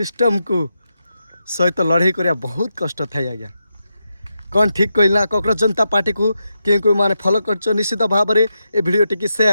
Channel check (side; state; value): both; inverted; correlation -0.87